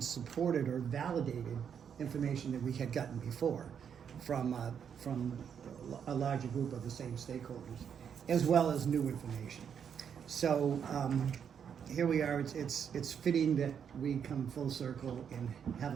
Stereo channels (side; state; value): left; quieter; 7.7 dB